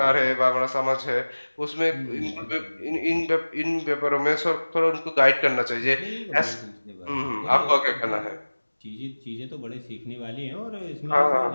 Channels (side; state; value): both; inverted; correlation -1.00